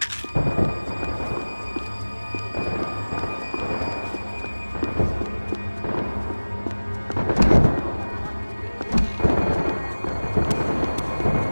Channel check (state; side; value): inverted; both; correlation -1.00